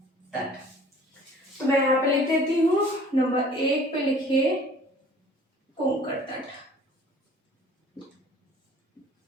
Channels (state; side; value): normal; both; correlation 0.51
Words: तट। तो मैं यहाँ पे लिख देती हूँ, नंबर 1 पे लिखिए कोंकण तट।